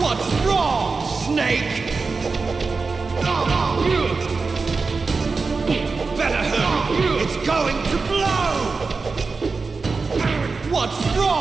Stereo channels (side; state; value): left; quieter; 4.3 dB